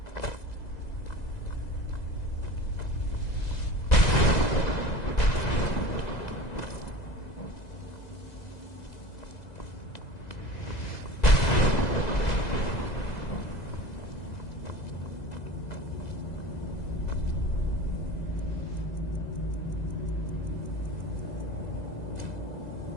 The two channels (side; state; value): right; late; 2.0 ms